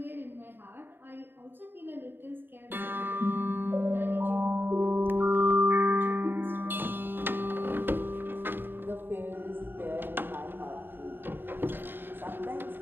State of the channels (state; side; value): late; left; 0.097 ms